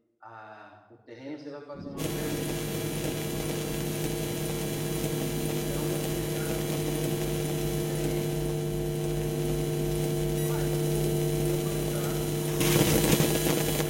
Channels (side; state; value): both; identical; correlation 1.00